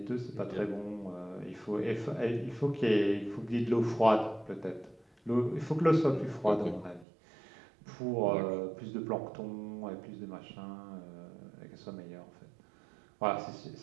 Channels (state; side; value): drops out; left; at 7.1 s